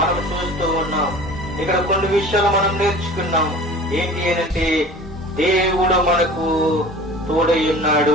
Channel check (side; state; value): both; normal; correlation 0.41